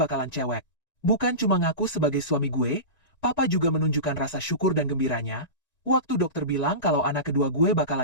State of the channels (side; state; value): right; late; 1.9 ms